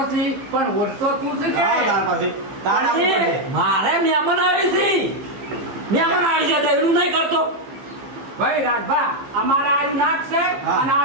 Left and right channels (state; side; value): late; left; 15 ms